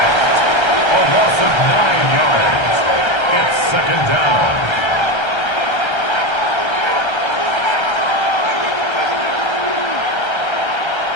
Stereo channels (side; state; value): right; late; 1.3 ms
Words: A loss of 9 yards. It's second down.